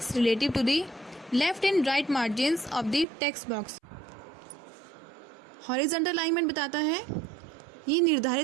relative to the left and right margins of the text box. Horizontal alignment बताता है, ये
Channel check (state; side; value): drops out; left; at 3.1 s